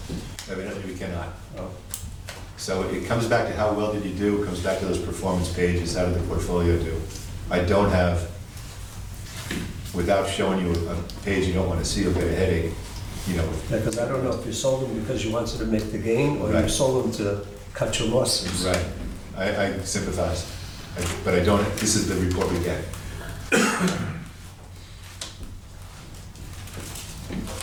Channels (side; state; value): both; identical; correlation 1.00